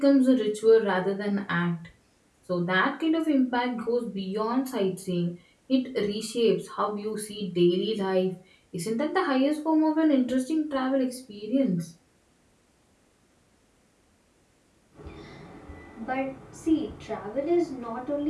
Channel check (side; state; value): both; identical; correlation 1.00